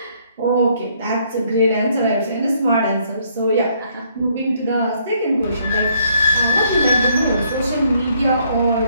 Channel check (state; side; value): inverted; both; correlation -0.68